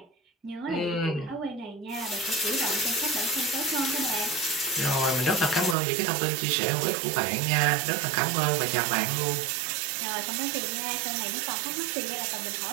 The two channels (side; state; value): left; drops out; at 5.8 s